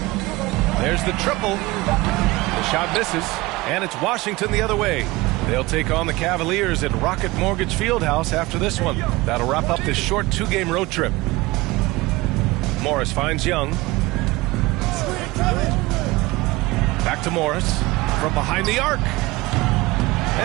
There's the triple. The shot misses, and it's Washington the other way. They'll take on the Cavaliers at Rocket Mortgage Fieldhouse after this one. That'll wrap up this short two-game road trip. Morris finds Young. Back to Morris from behind the arc.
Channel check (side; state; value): left; quieter; 20.9 dB